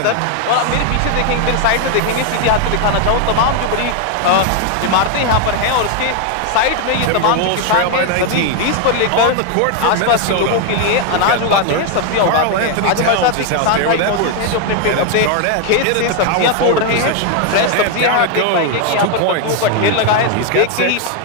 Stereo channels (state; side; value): different; both; correlation 0.00